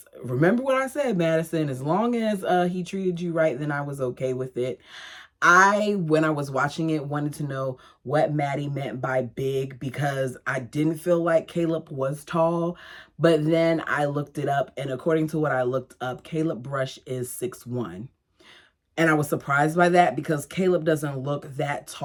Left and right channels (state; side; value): identical; both; correlation 1.00